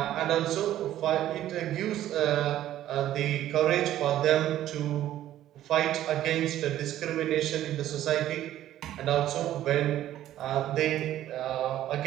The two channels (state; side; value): quieter; left; 12.8 dB